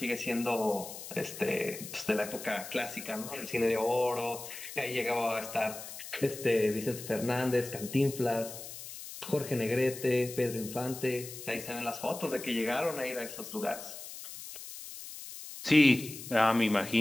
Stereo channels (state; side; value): noise; left; hiss, 11 dB below the sound